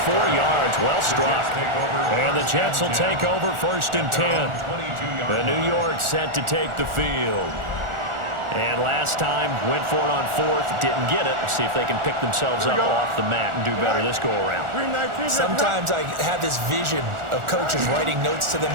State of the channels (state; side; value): late; left; 1.4 ms